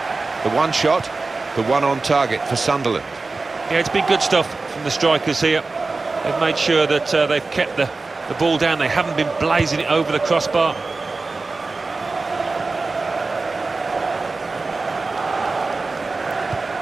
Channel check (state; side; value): quieter; left; 3.7 dB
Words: The one shot, the one on target for Sunderland. Yeah, it's been good stuff from the strikers here. They've made sure that they've kept the ball down. They haven't been blazing it over the crossbar.